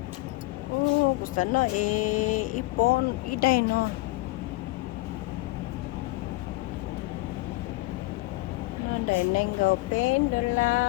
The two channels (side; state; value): right; quieter; 21.3 dB